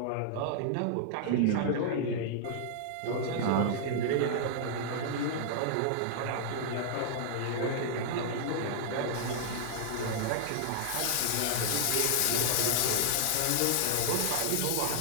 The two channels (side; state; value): both; different; correlation -0.01